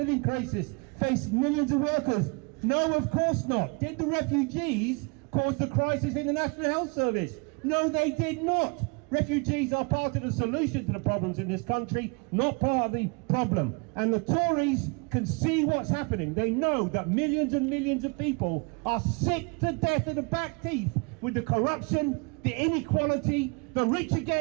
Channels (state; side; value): quieter; left; 31.8 dB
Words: crisis, face millions of workers? No, of course not. Did the refugees cause the crisis in the National Health Service? No, they did not. Refugees are part of the solution to the problems in this country, not part of the problem. And the Tories can see what's happening. They know that millions and millions of people are sick to death of the back teeth with the corruption, the inequality, the rich are